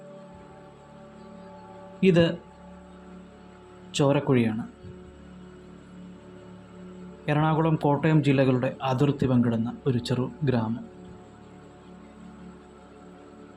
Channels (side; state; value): both; identical; correlation 1.00